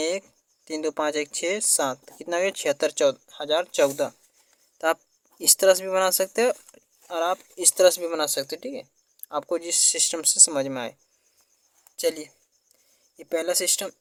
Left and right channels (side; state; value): both; identical; correlation 1.00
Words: 3 2 5 1 6 7। कितना गया 76,014। तो आप इस तरह से भी बना सकते हो और आप इस तरह से भी बना सकते हो। ठीक है, आपको जिस सिस्टम से समझ में आए। चलिए, ये पहला सिस्टम,